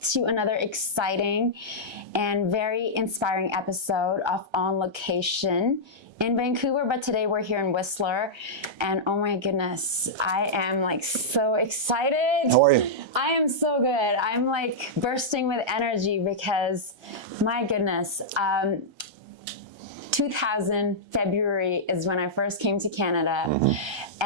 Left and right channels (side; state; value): left; late; 1.3 ms